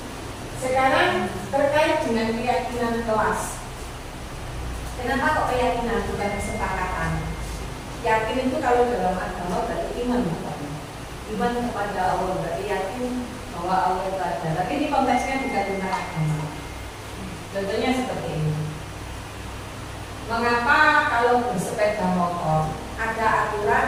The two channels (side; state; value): both; identical; correlation 1.00